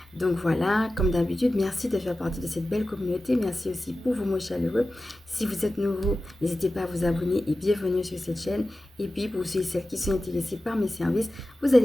Donc voilà, comme d'habitude, merci de faire partie de cette belle communauté. Merci aussi pour vos mots chaleureux. Si vous êtes nouveau, n'hésitez pas à vous abonner et bienvenue sur cette chaîne. Et puis, pour ceux et celles qui sont intéressés par mes services, vous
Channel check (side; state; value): both; normal; correlation 0.94